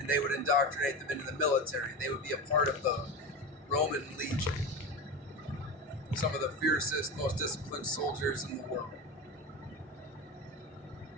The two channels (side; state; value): both; normal; correlation 0.24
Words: they would indoctrinate them into the military. They would be a part of the Roman Legion. Some of the fiercest, most disciplined soldiers in the world.